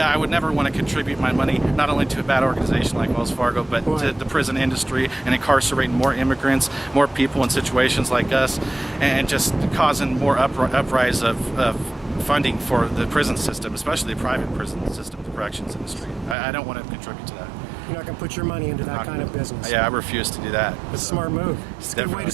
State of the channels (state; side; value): drops out; left; at 16.4 s